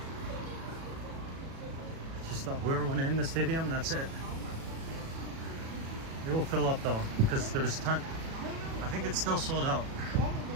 Just whoever went in the stadium, that's it. It will fill up though, because there was a ton. I think it's still sold out.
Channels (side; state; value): left; late; 37 ms